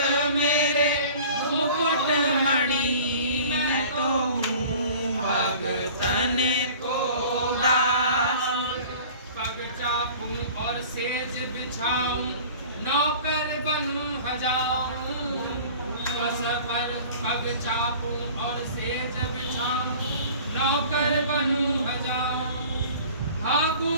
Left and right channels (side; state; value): both; inverted; correlation -0.45